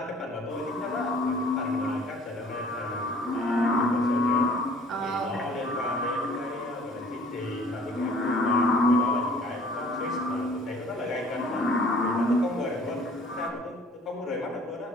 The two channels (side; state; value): both; normal; correlation 0.53